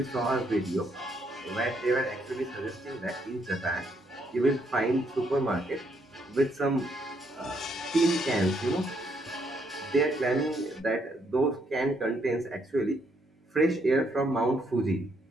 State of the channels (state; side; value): normal; both; correlation 0.73